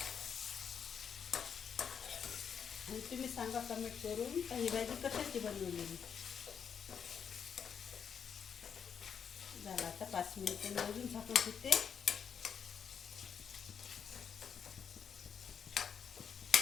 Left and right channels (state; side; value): quieter; right; 7.3 dB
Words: आणि तुम्ही सांगा कमेंट करून का ही भाजी कशाची बनवलेली. झाला आता 5 मिनिटं मी अजून झाकून ठेवते.